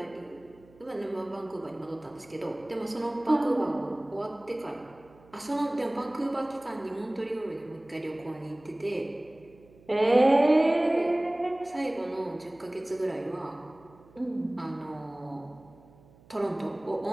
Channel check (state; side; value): noise; right; hum, 26 dB below the sound